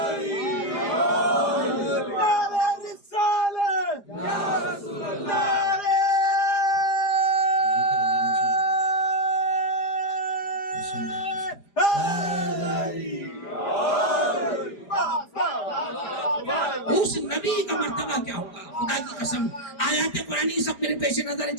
اس نبی کا مرتبہ کیا ہوگا. خدا کی قسم آیات قرآنی سب میرے پیش نظر ہے.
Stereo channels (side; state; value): right; late; 4.9 ms